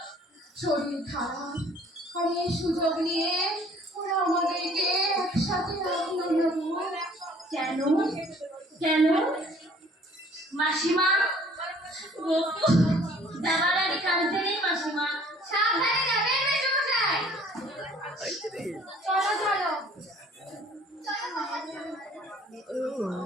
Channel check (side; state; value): both; normal; correlation 0.55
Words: শরীর খারাপ, আর এই সুযোগ নিয়ে ওরা আমাদেরকে একসাথে রাখলো না গো। কেন কেন? মাসিমা, গপু যাবার আগে কাঁদতে নেই মাসিমা। সাবধানে যাবেন মেসোমশাই। চলো চলো।